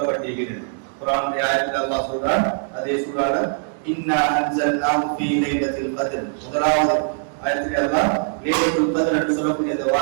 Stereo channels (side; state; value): left; silent; digital silence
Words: குர்ஆனுடைய ஆயத்தில் அல்லாஹ் சொல்றான், அதே சூறால இன்னா அன்ஸல்னாஹு ஃபீ லைலத்தில் கத்ர், முதலாவது ஆயத்தில் அல்லாஹ் லைலத்துல் கத்ர் என்று சொல்லக்கூடிய அந்த